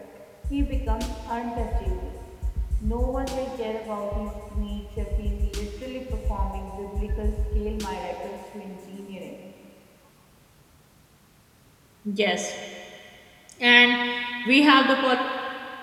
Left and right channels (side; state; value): both; identical; correlation 1.00